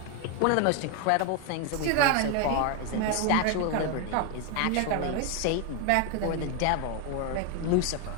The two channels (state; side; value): different; both; correlation 0.01